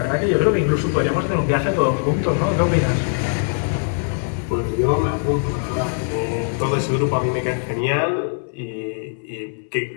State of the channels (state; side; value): silent; right; digital silence